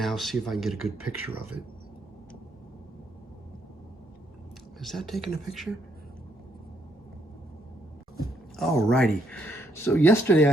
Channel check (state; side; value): normal; both; correlation 0.73